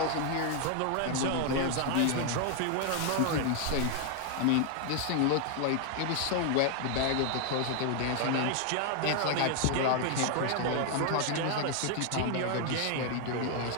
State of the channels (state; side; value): different; both; correlation 0.00